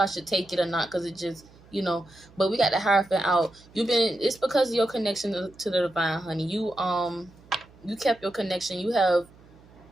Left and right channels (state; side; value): noise; right; hum, 25 dB below the sound